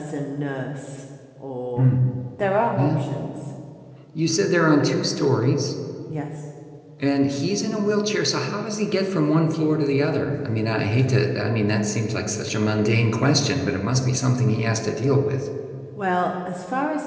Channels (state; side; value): identical; both; correlation 1.00